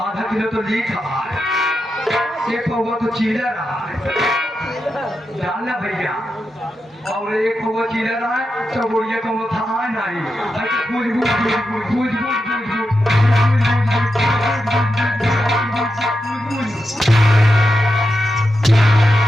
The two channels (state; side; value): normal; both; correlation 0.88